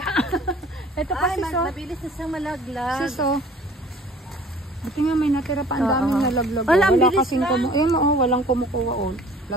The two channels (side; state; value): both; normal; correlation 0.50